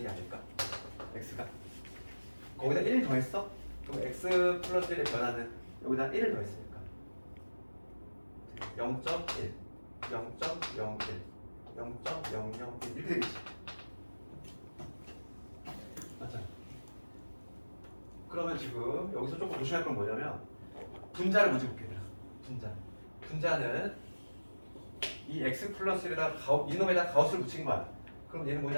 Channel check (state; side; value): inverted; both; correlation -1.00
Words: 아닐까? x가 거기다 1 더했어? 그럼 x 플러스 1의 변화는 여기다 1을 더했으니까 0.1, 0.01, 0.001 이렇게 되겠지. 맞잖아. 그러면 지금 여기서 조금 조심할 건 뭐냐면 분자를 먼저 볼게. 분자는 이 x 플러스 1에다 이놈에다 가우스를 붙인 거야. 그럼 얘는